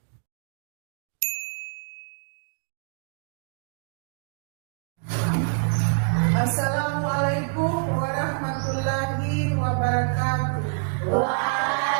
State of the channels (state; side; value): silent; left; 61 dB below the other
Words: Assalamualaikum warahmatullahi wabarakatuh.